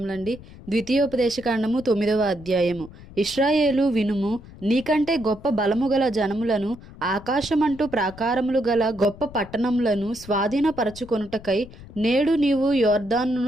ద్వితీయోపదేశకాండము 9వ అధ్యాయము. ఇశ్రాయేలు వినుము, నీకంటే గొప్ప బలము గల జనములను, ఆకాశమంటూ ప్రాకారములు గల గొప్ప పట్టణములను స్వాధీనపరచుకొనుటకై నేడు నీవు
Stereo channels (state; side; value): noise; left; rumble, 18 dB below the sound